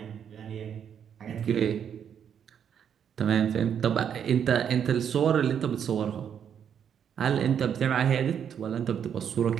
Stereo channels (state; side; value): quieter; left; 8.3 dB